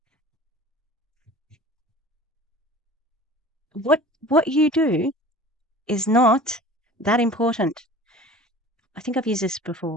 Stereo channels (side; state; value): both; normal; correlation 0.43